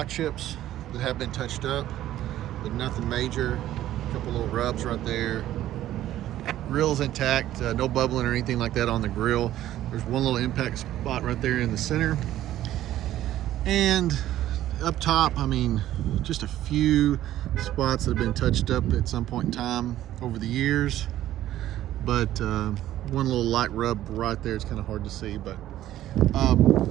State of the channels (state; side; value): quieter; left; 13.3 dB